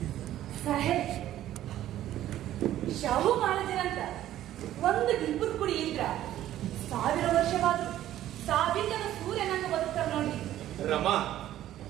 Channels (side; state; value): left; quieter; 13.0 dB